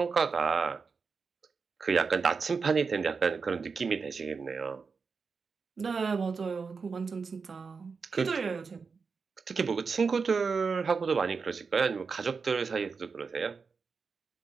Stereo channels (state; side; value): quieter; left; 5.1 dB